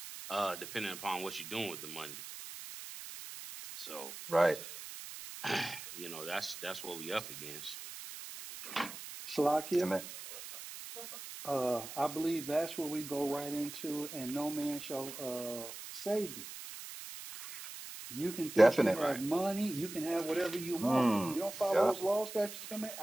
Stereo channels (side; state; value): right; noise; hiss, 11 dB below the sound